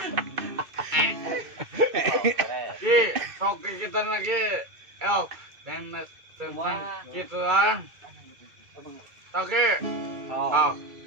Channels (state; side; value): late; left; 2.3 ms